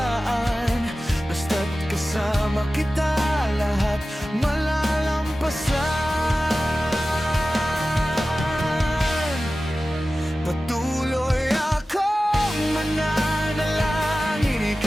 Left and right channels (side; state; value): both; normal; correlation 0.95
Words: Basta't kasama kita, lahat malalampasan. Patuloy akong mananalangin,